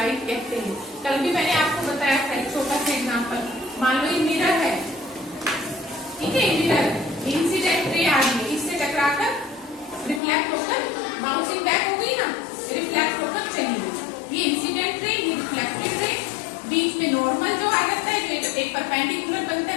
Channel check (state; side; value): drops out; right; at 10.2 s